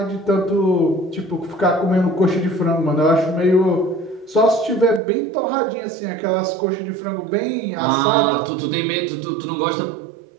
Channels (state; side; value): drops out; left; at 5.0 s